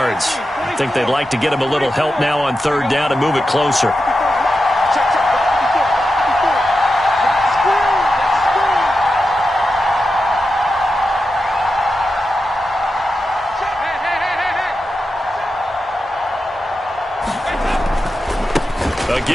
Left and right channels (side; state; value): both; normal; correlation 0.90